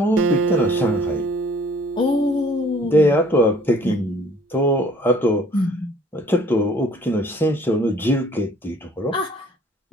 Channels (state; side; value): normal; both; correlation 0.56